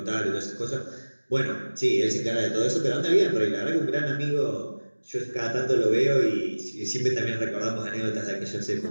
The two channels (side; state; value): both; inverted; correlation -1.00